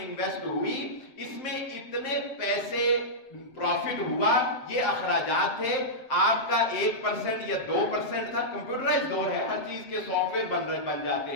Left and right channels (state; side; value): late; right; 7.7 ms